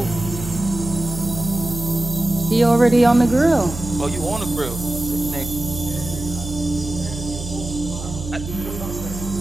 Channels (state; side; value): noise; right; hum, 9 dB below the sound